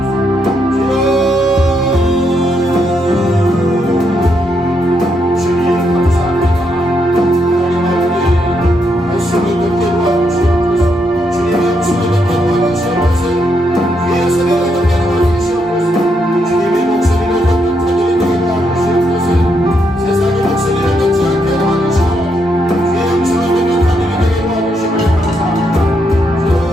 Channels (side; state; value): both; normal; correlation 0.78